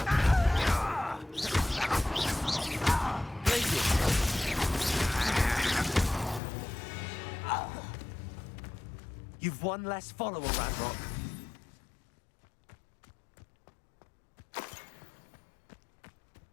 You've one less follower, Ranrock.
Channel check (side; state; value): right; drops out; at 6.4 s